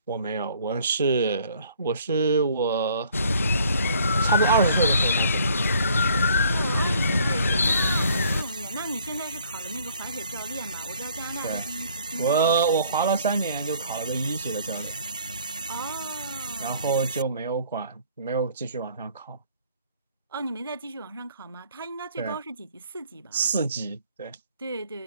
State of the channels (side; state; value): both; inverted; correlation -0.59